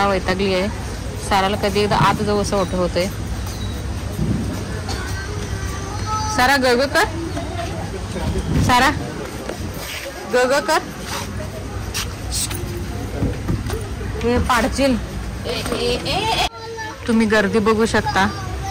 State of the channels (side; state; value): both; identical; correlation 1.00